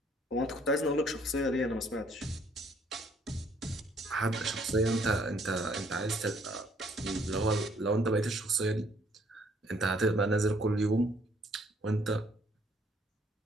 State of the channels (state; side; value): normal; both; correlation 0.64